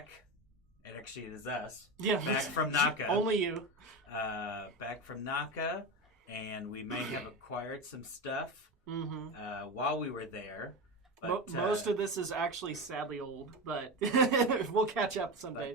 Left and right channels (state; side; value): normal; both; correlation 0.20